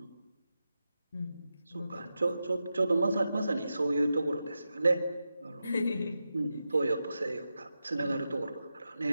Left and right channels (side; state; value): both; inverted; correlation -0.90